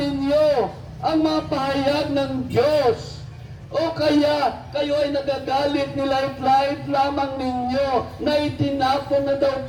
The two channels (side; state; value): both; identical; correlation 1.00